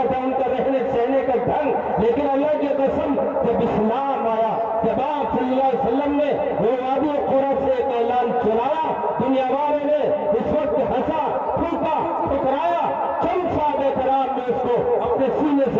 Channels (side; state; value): both; identical; correlation 1.00